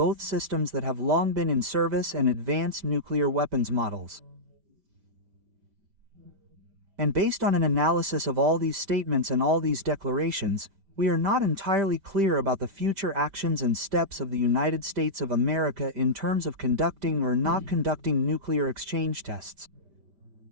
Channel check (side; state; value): left; late; 5.1 ms